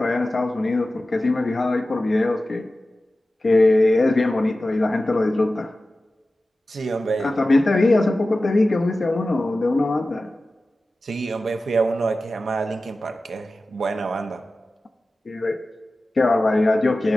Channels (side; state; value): both; normal; correlation 0.95